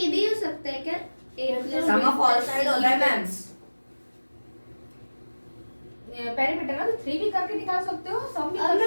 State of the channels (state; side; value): inverted; both; correlation -1.00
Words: भी हो सकता है क्या, सम ऑफ ऑल साइड होता है मैम। पेरीमीटर ना तो 3 भी करके निकाल सकते हो, सम भी और कर